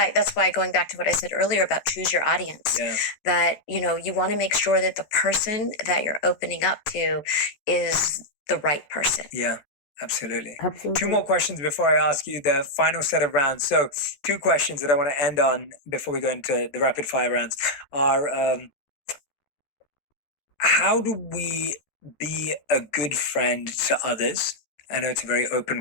going back to what I said earlier about choose your audience, that, you know, you want to make sure that the person that you're opening up to is the right person. Yeah, absolutely. 2 more questions before I ask you the final set of rounds. So 2 questions that I want to end on before we go into the rapid fire rounds are, how do we be a good friend to others? I know it's a very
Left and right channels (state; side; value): late; right; 14 ms